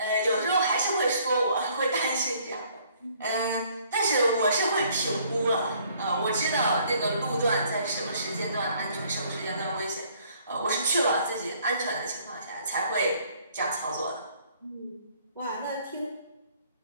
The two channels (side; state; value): both; inverted; correlation -0.61